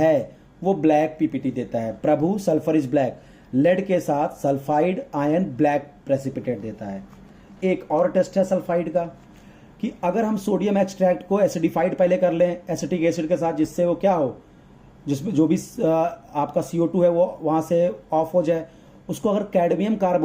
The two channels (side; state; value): both; identical; correlation 1.00